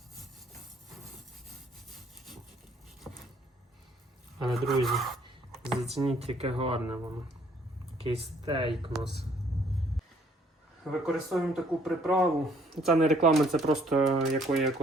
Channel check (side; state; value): both; normal; correlation 0.62